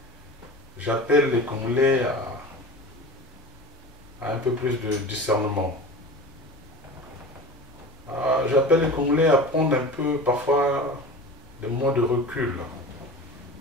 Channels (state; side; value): normal; both; correlation 0.34